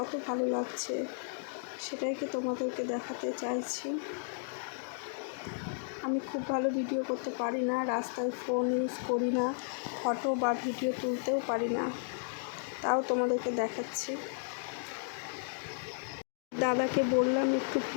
ভালো লাগছে সেটাইকে তোমাদেরকে দেখাতে চাইছি। আমি খুব ভালো ভিডিও করতে পারি না, রাস্তায় ফোন ইউজ করি না, ফটো বা ভিডিও তুলতেও পারি না, তাও তোমাদেরকে দেখাচ্ছি। দাদাকে বললাম একটু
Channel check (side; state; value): right; silent; digital silence